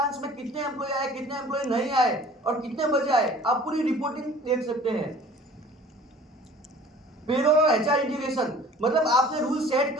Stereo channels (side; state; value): both; normal; correlation 0.48